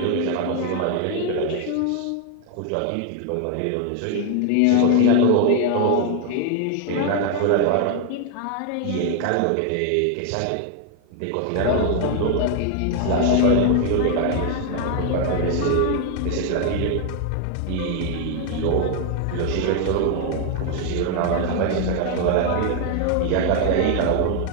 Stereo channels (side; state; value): both; different; correlation 0.00